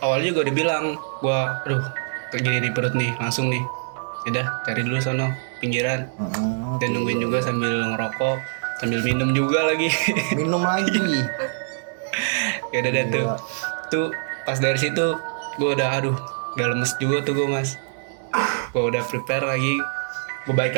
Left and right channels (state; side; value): silent; left; digital silence